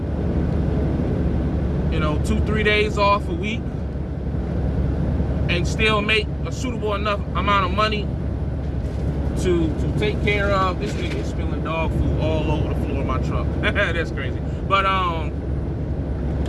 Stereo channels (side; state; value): both; identical; correlation 1.00